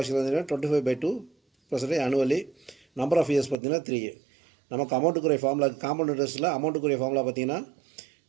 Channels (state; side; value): drops out; left; at 3.6 s